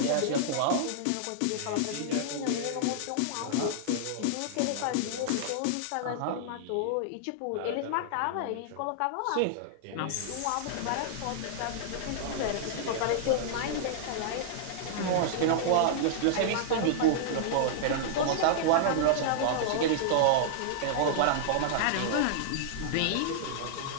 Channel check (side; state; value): both; different; correlation -0.01